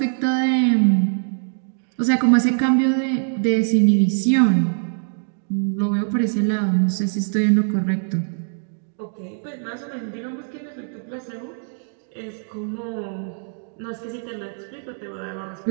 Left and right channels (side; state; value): left; silent; digital silence